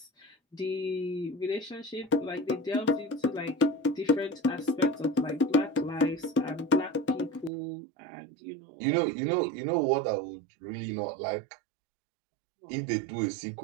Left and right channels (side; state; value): left; drops out; at 7.5 s